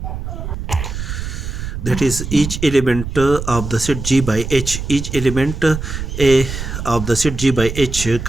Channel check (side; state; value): right; noise; rumble, 6 dB below the sound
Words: That is, each element of the set G by H, each element A of the set G by H